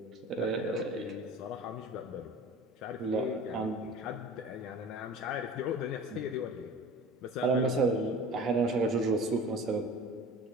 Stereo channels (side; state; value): both; normal; correlation 0.39